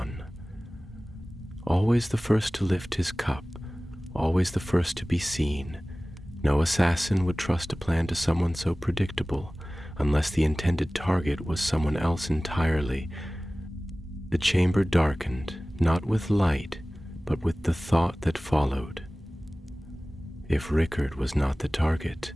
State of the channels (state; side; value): normal; both; correlation 0.98